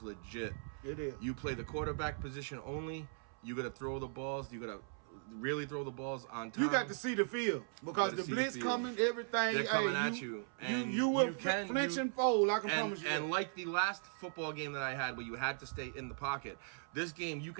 legit. It is. You play the quarterback position only. You got to throw the balls. You got to really throw the balls on time. You got to see the field because the blitz coming, everything. They're coming at you. And you will flinch and fold, I can promise you. And like the last football game that I had where you had to stay in the pocket, this game you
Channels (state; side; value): silent; left; 52 dB below the other